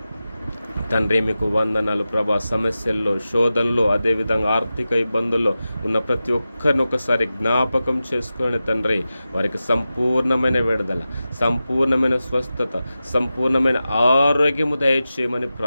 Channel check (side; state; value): both; inverted; correlation -0.93